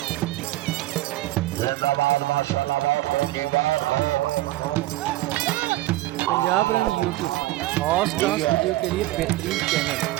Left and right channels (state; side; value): quieter; left; 17.1 dB